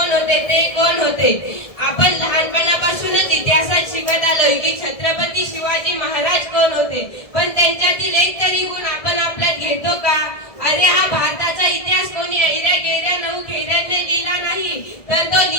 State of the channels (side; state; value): right; late; 1.7 ms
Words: होते, ते कोण होते. आपण लहानपणापासूनच इतिहासात शिकत आलोय की छत्रपती शिवाजी महाराज कोण होते, पण त्यांच्यातील एक तरी गुण आपण आपल्यात घेतो का? अरे हा भारताचा इतिहास कोणी ऐऱ्या गेऱ्या नऊ खेऱ्यांनी लिहिला नाही, तर तो